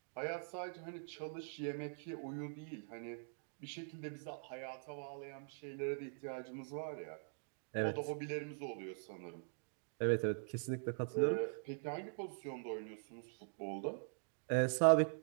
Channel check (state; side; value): silent; left; digital silence